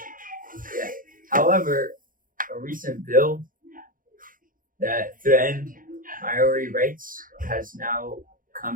However, a recent bill that threatened Maori rights has now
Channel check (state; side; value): late; left; 0.40 ms